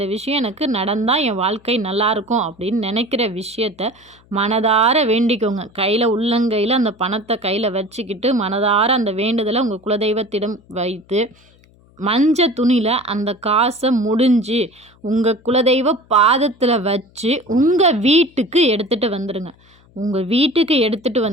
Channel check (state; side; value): noise; left; hum, 30 dB below the sound